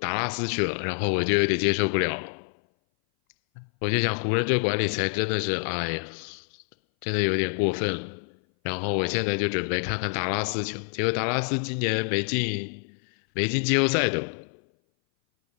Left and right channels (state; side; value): silent; right; 58 dB below the other